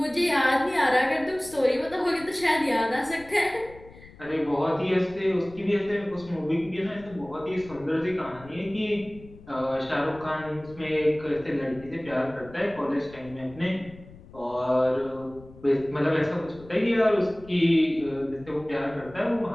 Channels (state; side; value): noise; left; rumble, 20 dB below the sound